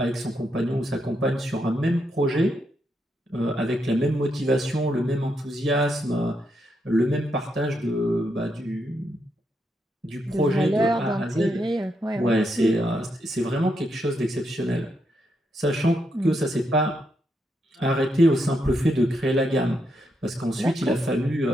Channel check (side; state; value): both; normal; correlation 0.80